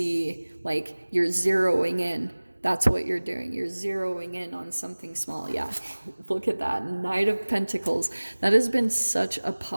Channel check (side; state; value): both; inverted; correlation -1.00